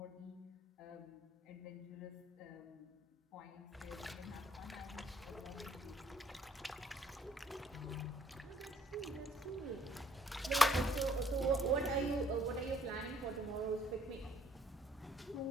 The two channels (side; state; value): both; normal; correlation 0.64